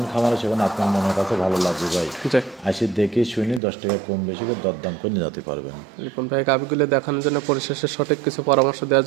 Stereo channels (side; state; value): left; drops out; at 3.6 s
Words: খামারে সেখানে আপনার মনের কাছে ভালো লাগবে ভাই। আসি দেখে শুনি 10 টাকা কম বেশি করে দরদাম করে নিয়ে যেতে পারবেন। রিপন ভাই, গাভীগুলো দেখানোর জন্য পরিশেষে সঠিক কিছু পরামর্শ দেওয়ার